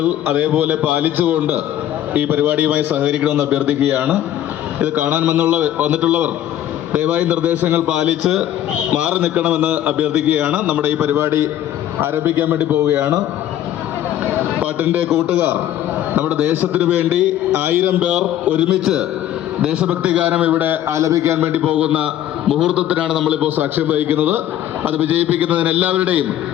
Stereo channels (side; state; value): right; quieter; 11.9 dB